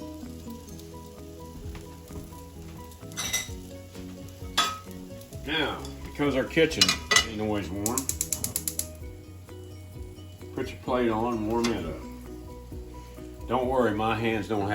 Now, because our kitchen ain't always warm, put your plate on and warm it up. Don't worry, my hands don't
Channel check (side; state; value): both; identical; correlation 1.00